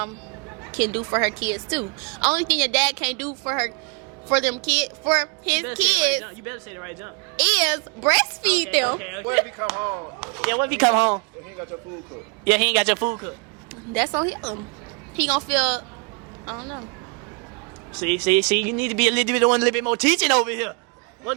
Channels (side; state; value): left; quieter; 34.1 dB